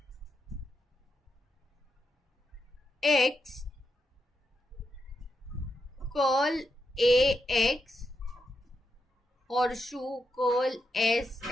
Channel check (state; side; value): normal; both; correlation 0.84